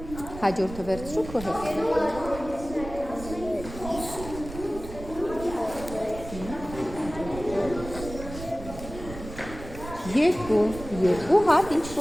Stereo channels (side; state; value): right; noise; rumble, 12 dB below the sound